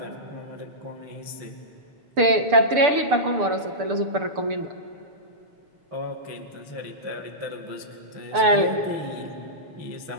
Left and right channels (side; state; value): left; late; 6.8 ms